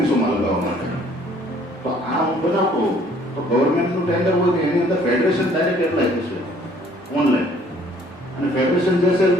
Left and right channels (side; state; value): both; normal; correlation 0.59